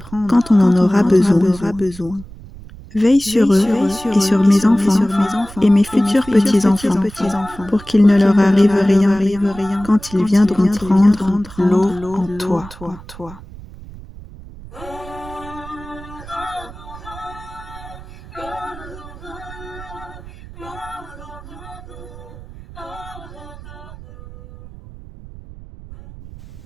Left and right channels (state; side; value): noise; right; rumble, 17 dB below the sound